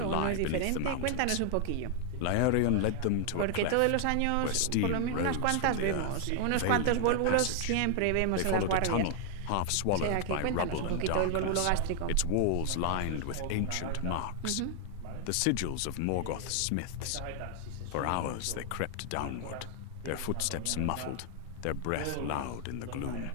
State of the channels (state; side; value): different; both; correlation 0.00